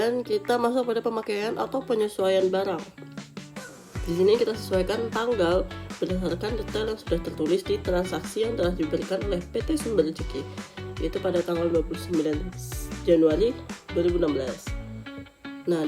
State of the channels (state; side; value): identical; both; correlation 1.00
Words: kita masuk pada pemakaian atau penyesuaian barang. Di sini kita sesuaikan tanggal berdasarkan detail yang sudah tertulis di transaksi yang telah diberikan oleh PT Sumber Rezeki, yaitu pada tanggal 29 Januari 2016. Nah,